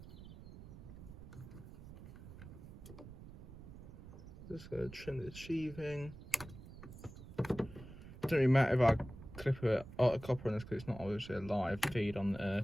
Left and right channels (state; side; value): noise; right; rumble, 14 dB below the sound